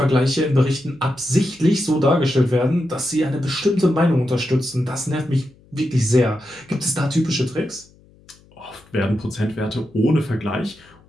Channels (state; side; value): noise; left; hum, 29 dB below the sound